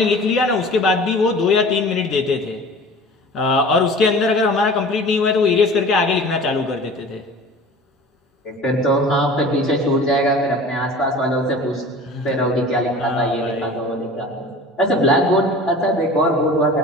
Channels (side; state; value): both; normal; correlation 0.41